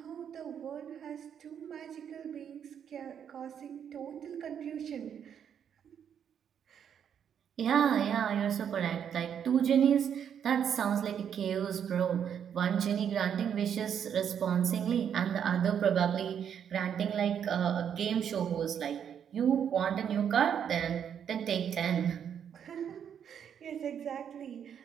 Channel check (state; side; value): quieter; left; 8.4 dB